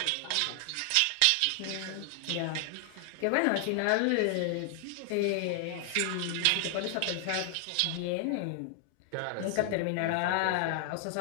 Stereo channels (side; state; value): both; different; correlation 0.00